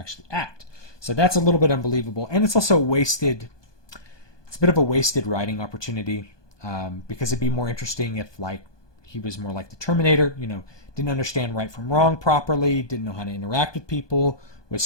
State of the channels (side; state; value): right; late; 1.2 ms